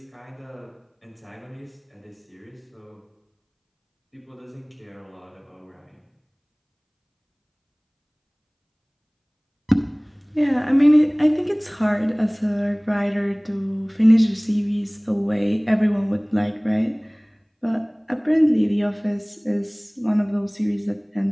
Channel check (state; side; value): identical; both; correlation 1.00